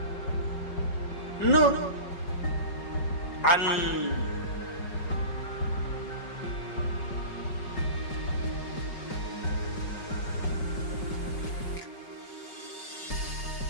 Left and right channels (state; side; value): late; right; 5.3 ms